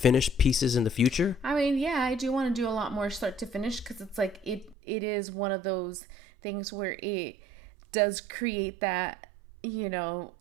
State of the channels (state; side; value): drops out; left; at 4.8 s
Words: pieces in the future? I mean, yeah, I do want to do a lot more start to finish because it's like it is one of those things where it does create that